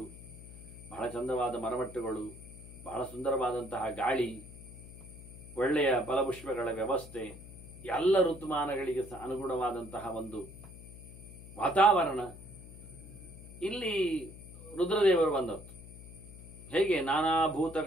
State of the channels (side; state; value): left; noise; hum, 16 dB below the sound